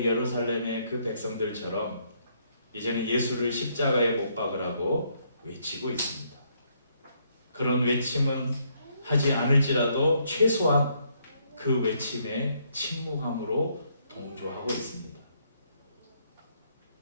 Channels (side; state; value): both; inverted; correlation -0.72